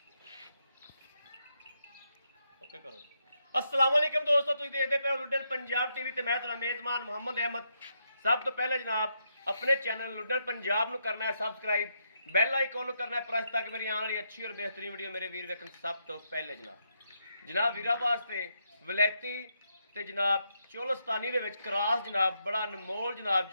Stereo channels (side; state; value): both; inverted; correlation -0.80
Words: ओके करो। अस्सलाम वालेकुम दोस्तों, तुसीं देखदे पे हो लुड्डन पंजाब टीवी ते मैं तुहाडा मेज़बान मुहम्मद अहमद। सब तो पहले जनाब अपने चैनल लुड्डन पंजाब नूं करना है सबसक्राइब, बैल आइकॉन नूं करना है प्रेस ताकि मेरी आने वाली अच्छी और बेहतरीन वीडियो मेरे वीर वेखण सब तो पहले। जनाब वीरा वास्ते वलैती ते जनाब चोलस्तानी दे विच क्रॉस जनाब बड़ा अनमोल जनाब